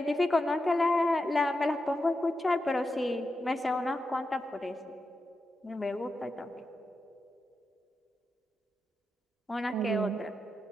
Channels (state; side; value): normal; both; correlation 0.88